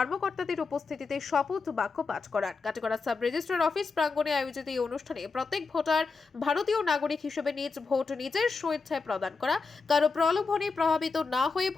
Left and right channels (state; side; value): quieter; right; 4.5 dB